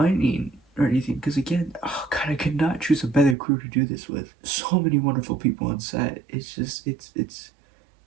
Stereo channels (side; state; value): left; drops out; at 3.4 s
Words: or anything, because again, oh god, I could not choose a better crew to do this with. So many wonderful people on set. It's just it's